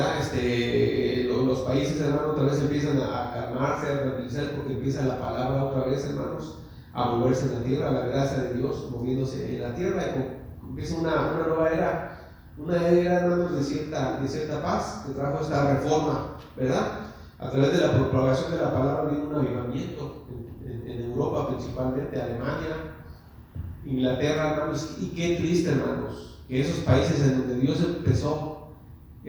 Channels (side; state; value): both; identical; correlation 1.00